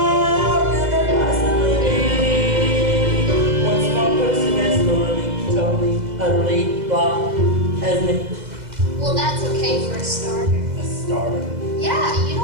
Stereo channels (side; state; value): left; late; 2.0 ms